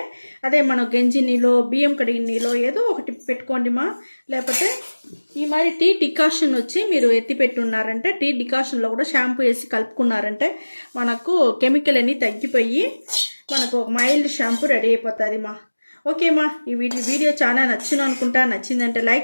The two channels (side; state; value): both; inverted; correlation -1.00